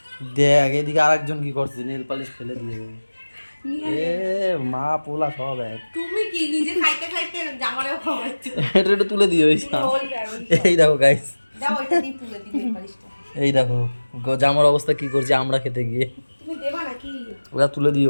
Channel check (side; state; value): both; inverted; correlation -1.00